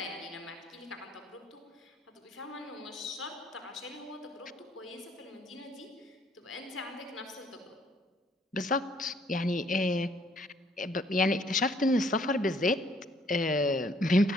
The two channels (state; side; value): normal; both; correlation 0.64